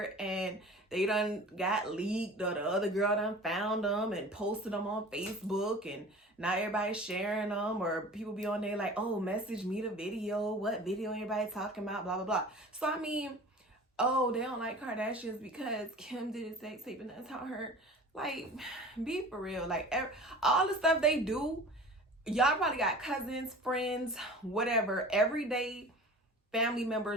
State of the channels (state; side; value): normal; both; correlation 0.40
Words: and they done got leaked, or the other girl done found them and posted them on Facebook, and now everybody's sharing them, or people be on there like, oh, message me the video, what video everybody talking about, blah, blah, blah. So, I mean, oh, they don't like Kardashians because Kim did a sex tape and that's how her, like, be for real. Like, all the stuff they do, y'all probably got cousins, friends, whatever, everyday family